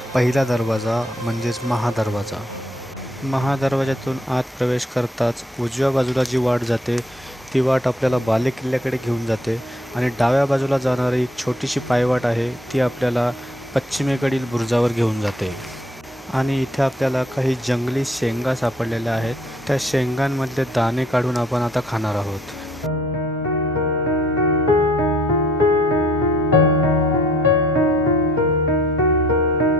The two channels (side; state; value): both; normal; correlation 0.62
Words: पहिला दरवाजा म्हणजेच महादरवाजा। महादरवाज्यातून आत प्रवेश करताच उजव्या बाजूला जी वाट जाते ती वाट आपल्याला बालेकिल्ल्याकडे घेऊन जाते आणि डाव्या बाजूला जाणारी एक छोटीशी पायवाट आहे ती आपल्याला पश्चिमेकडील बुरुजावर घेऊन जाते। आणि इथे आपल्याला काही जंगली शेंगा सापडलेल्या आहेत, त्या शेंगांमधले दाणे काढून आपण आता खाणार आहोत।